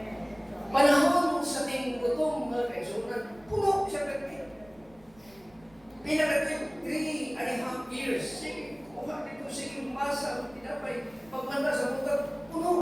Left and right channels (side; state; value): right; noise; rumble, 27 dB below the sound